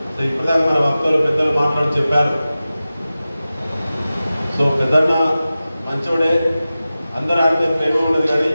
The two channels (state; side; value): inverted; both; correlation -0.95